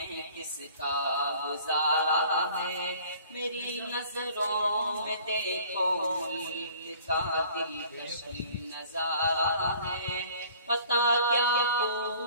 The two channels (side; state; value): both; inverted; correlation -0.52